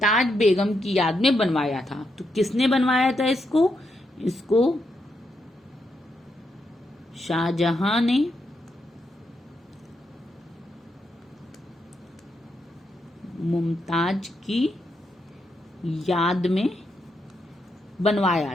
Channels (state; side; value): normal; both; correlation 0.81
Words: बेगम की याद में बनवाया था। तो किसने बनवाया था इसको? इसको शाहजहां ने मुमताज की याद में बनवाया